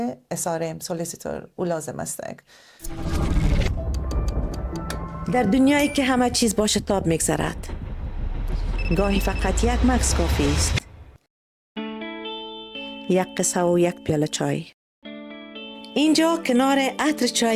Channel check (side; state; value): both; identical; correlation 1.00